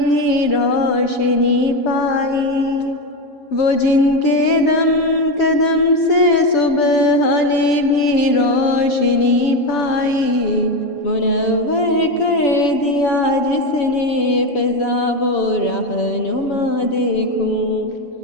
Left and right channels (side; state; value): right; late; 6.9 ms